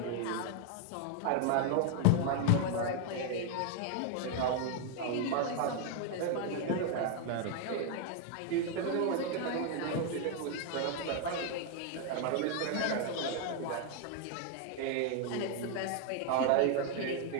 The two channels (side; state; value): both; different; correlation 0.01